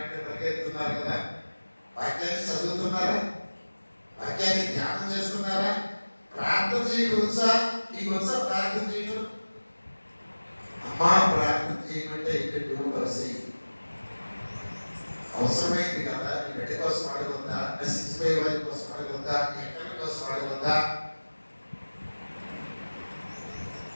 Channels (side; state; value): both; inverted; correlation -1.00